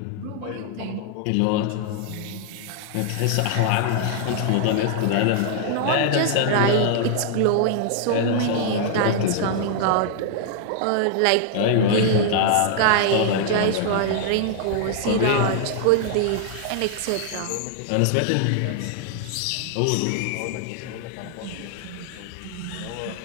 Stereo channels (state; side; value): different; both; correlation 0.00